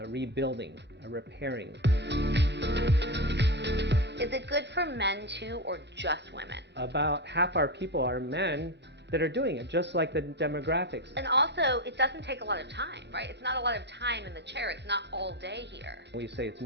a rebuilding, a repairing. Is it good for men too, or just women? About half our people are men that are doing it, just like the demographics. And also, it doesn't take a lot of time, right? It's not a lot of time in the chair. It's not all day here. We say it's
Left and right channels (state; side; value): normal; both; correlation 0.15